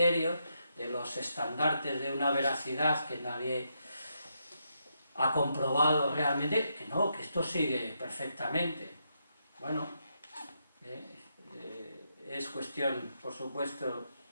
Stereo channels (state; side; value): inverted; both; correlation -0.81